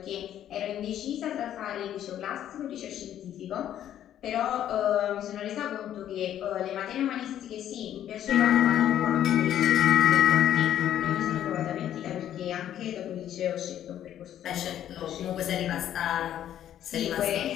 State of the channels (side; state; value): right; quieter; 11.0 dB